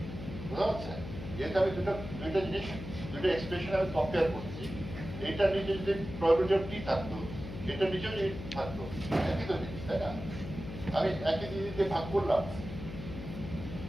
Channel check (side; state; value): left; noise; hum, 9 dB below the sound